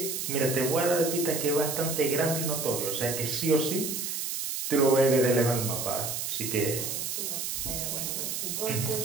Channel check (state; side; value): noise; right; hiss, 3 dB below the sound